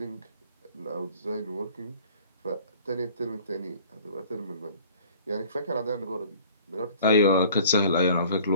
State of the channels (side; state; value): both; inverted; correlation -0.51